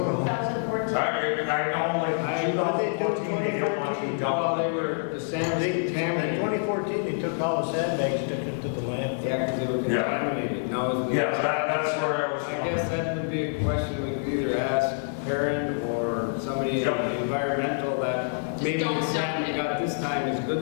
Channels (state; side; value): silent; right; digital silence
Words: know. 2014. I know, like, 2014, they don't want to be Well, done. they were, the sand was In contaminated. 2014, they took all the sandbags, took it to the landfill. Yeah, because they were Yeah. contaminated. Now, is the- Yeah, that's where I was I going. guess that would be a question we could either ask parent or somebody in Yep. the environmental that maybe don't the dump sand we it. got this time is